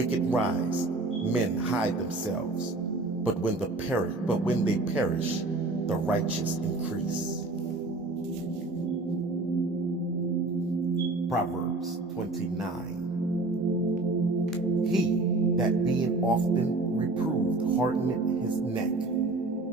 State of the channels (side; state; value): left; quieter; 3.1 dB